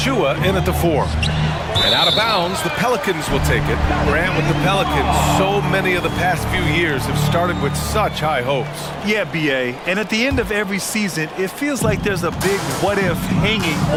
in at the 4. And out of bounds, the Pelicans will take it. Grant, with the Pelicans, so many of the past few years have started with such high hopes. Yeah, BA, and at the end of every season, it feels like there's a big what-if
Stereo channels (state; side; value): identical; both; correlation 1.00